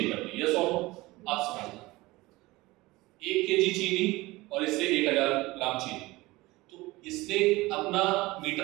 कर दी। यस और नो? आप समझना, 1 केजी चीनी और इससे 1000 ग्राम चीनी, तो इसने अपना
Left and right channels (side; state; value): left; quieter; 20.6 dB